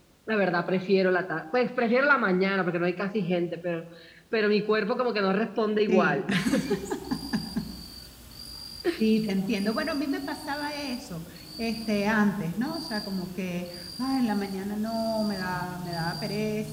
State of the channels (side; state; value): both; identical; correlation 1.00